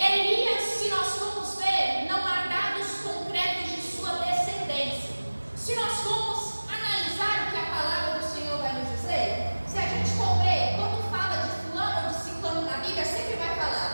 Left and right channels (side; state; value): both; inverted; correlation -1.00